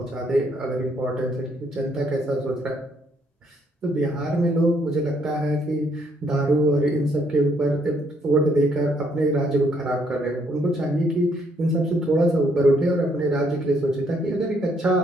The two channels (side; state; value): both; normal; correlation 0.69